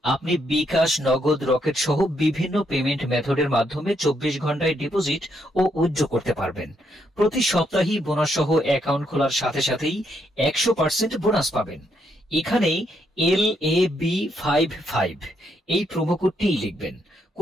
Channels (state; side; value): normal; both; correlation 0.76